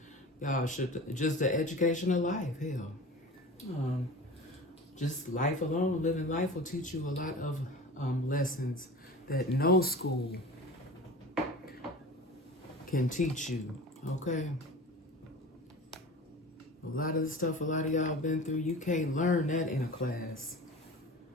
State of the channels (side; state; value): both; normal; correlation 0.36